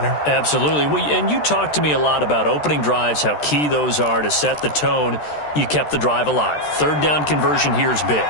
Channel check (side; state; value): right; late; 13 ms